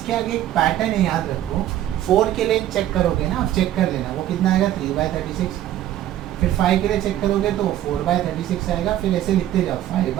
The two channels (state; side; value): quieter; left; 12.6 dB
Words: आगे एक पैटर्न है, याद रखो। 4 के लिए चेक करोगे ना, आप चेक कर लेना वो कितना आएगा 3/36। फिर 5 के लिए चेक करोगे तो 4/36 आएगा। फिर ऐसे लिखते जाओ